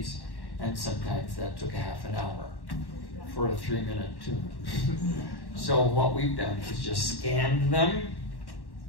And sometimes that took a half an hour for a 3-minute tune. So what we've done is just scanned them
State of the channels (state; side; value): late; right; 1.1 ms